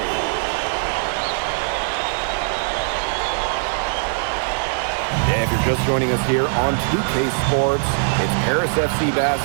Yeah, if you're just joining us here on 2K Sports, it's Paris FC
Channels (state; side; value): silent; left; digital silence